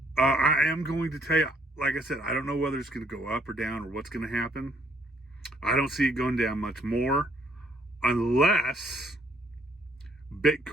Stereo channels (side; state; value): both; normal; correlation 0.66